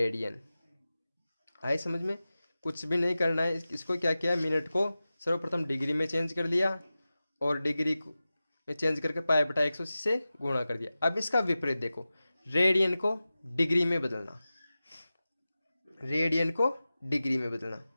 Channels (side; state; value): both; inverted; correlation -0.95